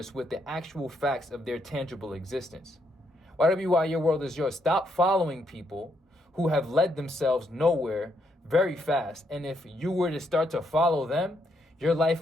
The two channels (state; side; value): normal; both; correlation 0.76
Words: with the actual facts of their tangible existence? Whatever you are, your world is yours. Stop following people who have led themselves nowhere very fast. And if you were to start to follow them, your